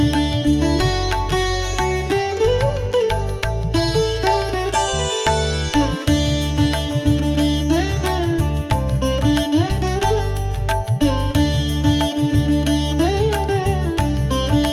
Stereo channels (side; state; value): both; identical; correlation 1.00